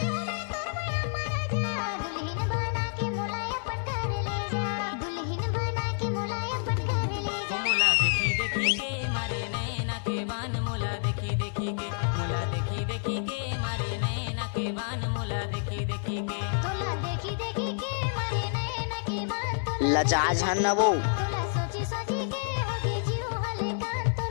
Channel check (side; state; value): right; silent; 56 dB below the other